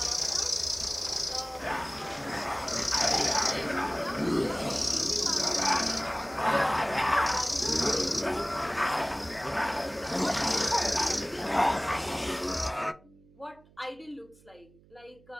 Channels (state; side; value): noise; right; hum, 28 dB below the sound